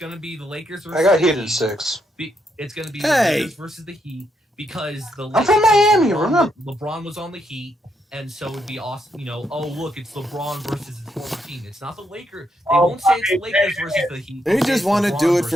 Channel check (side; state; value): both; normal; correlation 0.78